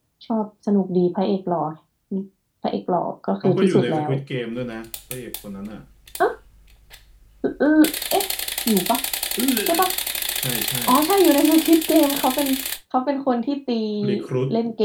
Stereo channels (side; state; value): both; identical; correlation 1.00